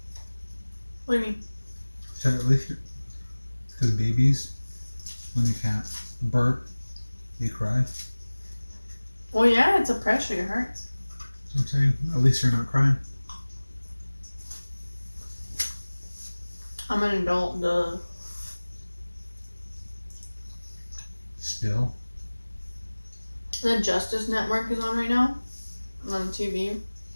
What do you mean? At least because babies, when they can't burp, they cry. Well, yeah, it's a pressure. It hurts. That's what I'm saying. At least you're not crying. I'm an adult, duh. Still. The Justice Network is on right now. On TV.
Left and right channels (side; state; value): both; inverted; correlation -1.00